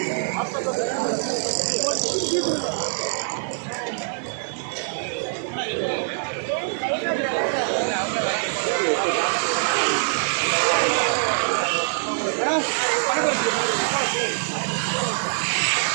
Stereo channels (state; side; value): silent; left; 63 dB below the other